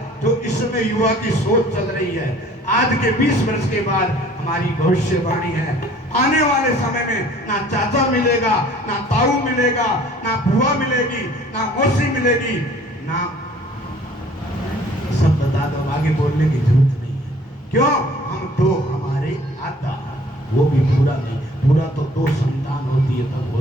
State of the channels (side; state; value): both; normal; correlation 0.53